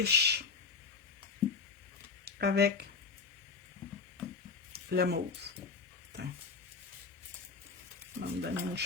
avec le mauve. va me donner une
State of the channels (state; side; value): quieter; right; 4.9 dB